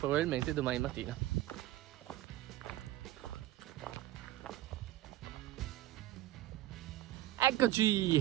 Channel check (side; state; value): left; quieter; 15.1 dB